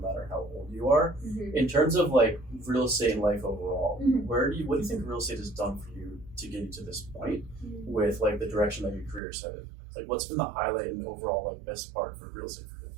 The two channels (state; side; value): drops out; left; at 9.2 s